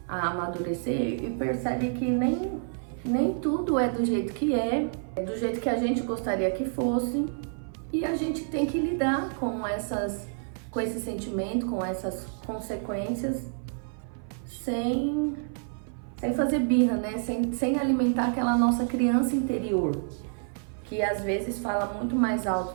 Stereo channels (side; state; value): left; silent; 56 dB below the other